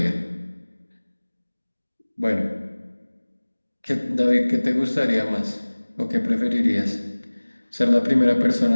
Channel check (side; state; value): both; inverted; correlation -1.00